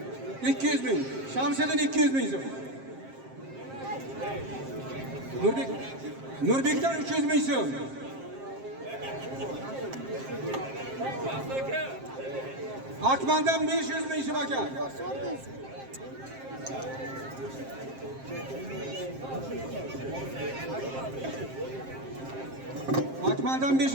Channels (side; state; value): left; late; 7.5 ms